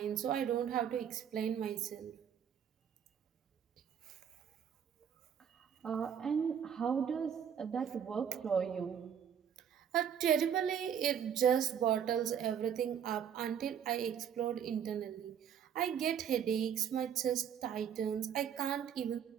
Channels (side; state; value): left; quieter; 8.4 dB